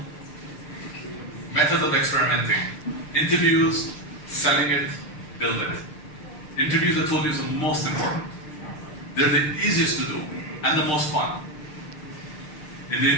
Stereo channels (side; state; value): right; late; 6.6 ms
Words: methods of experimenting. Interviews, selling it, build it. Interviews, I told you, is the most important. They're the easiest to do and the most fun. In the